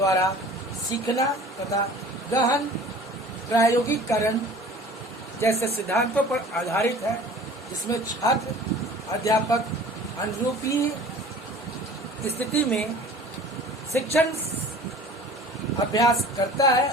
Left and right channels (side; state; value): both; normal; correlation 0.45